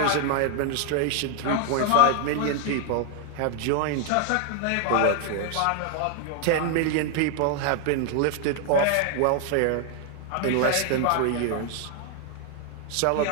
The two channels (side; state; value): both; different; correlation 0.00